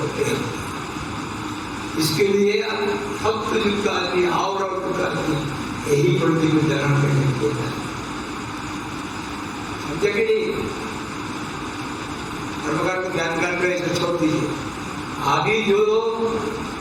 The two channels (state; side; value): identical; both; correlation 1.00